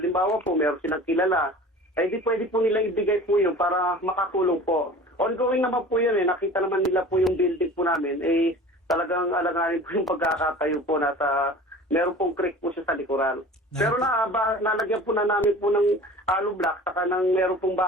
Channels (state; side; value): normal; both; correlation 0.41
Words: po, meron silang kilala, ay di pwede po nilang ibigay po yun para makatulong po. Ongoing naman po yun nakita naman nila po yung building po namin, talagang alanganin po yung pagkakatayo po na meron pong creek po siya sa likuran. Pero nalagyan po na namin po ng hollow block, saka meron pong